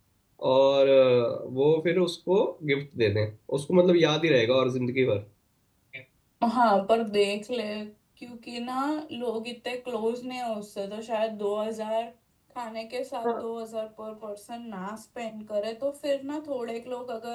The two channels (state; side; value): identical; both; correlation 1.00